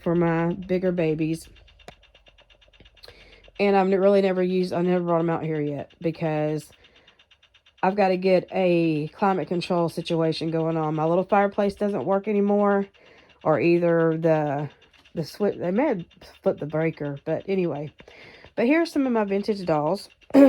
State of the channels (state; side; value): identical; both; correlation 1.00